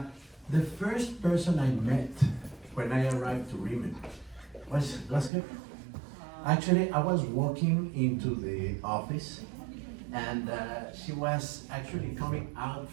first person I met when I arrived to RIMAN was her. Actually, I was walking into the office, and she was actually coming out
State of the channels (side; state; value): left; drops out; at 5.3 s